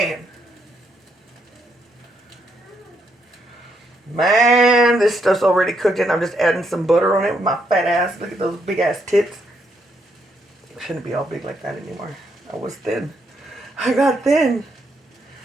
Man, this stuff's already cooked and I'm just adding some butter on it with my fat ass. Look at those big ass tits. I shouldn't be all big like that anymore. I was thin. I got thin.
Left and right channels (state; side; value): normal; both; correlation 0.76